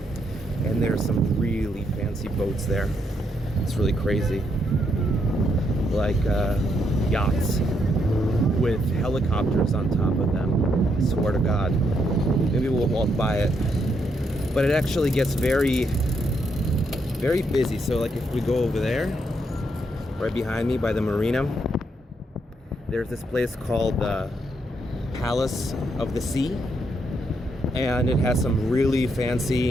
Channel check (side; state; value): both; normal; correlation 0.76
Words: And there's some really fancy boats there. It's really crazy. Like yachts with helicopters on top of them. I swear to God. Maybe we'll walk by it. But it actually gets very, very busy. So like if we go over there, right behind me by the marina, there's this place called the Palace of the Sea. And it has some really